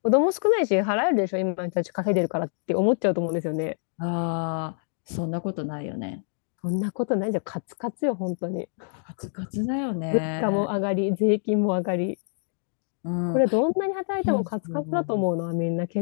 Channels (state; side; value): silent; right; digital silence